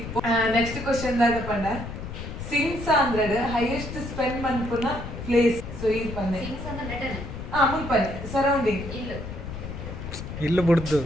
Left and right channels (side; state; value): left; noise; rumble, 8 dB below the sound